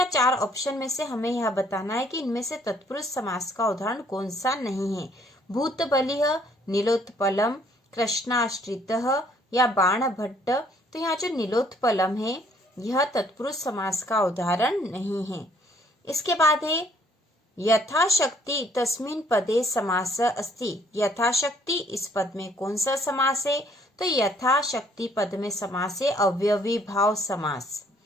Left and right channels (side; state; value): both; normal; correlation 0.62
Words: 4 ऑप्शन में से हमें यह बताना है कि इनमें से तत्पुरुष समास का उदाहरण कौन सा नहीं है। भूत बलिः, नीलोत्पलम, कृष्णाश्रितः या बाण भट्ट। तो यहाँ जो नीलोत्पलम है यह तत्पुरुष समास का उदाहरण नहीं है। इसके बाद है यथाशक्ति तस्मिन् पदे समास अस्ति। यथाशक्ति, इस पद में कौन सा समास है? तो यथाशक्ति पद में समास है अव्यवी भाव समास।